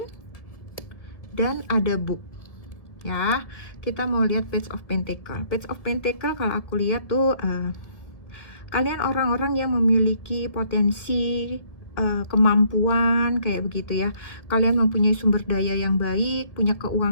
dan ada book ya. Kita mau lihat Page of Pentacles. Page of Pentacles kalau aku lihat tuh kalian orang-orang yang memiliki potensi, kemampuan kayak begitu ya. Kalian mempunyai sumber daya yang baik, punya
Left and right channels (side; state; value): right; late; 1.9 ms